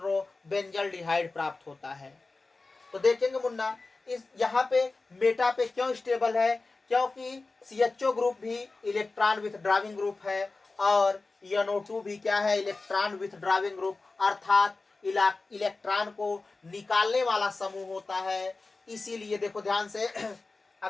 बेंजल्डिहाइड प्राप्त होता है। तो देखेंगे मुन्ना, इस यहाँ पे मेटा पे क्यों स्टेबल है, क्योंकि CHO ग्रुप भी इलेक्ट्रॉन विथड्राविंग ग्रुप है और NO2 भी क्या है, इलेक्ट्रॉन विथड्राविंग ग्रुप अर्थात इलेक्ट्रॉन को निकालने वाला समूह होता है। इसीलिए देखो ध्यान से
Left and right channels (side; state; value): right; quieter; 3.6 dB